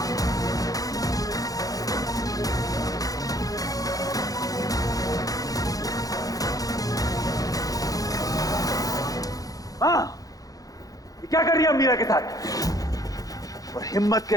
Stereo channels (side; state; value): right; late; 0.17 ms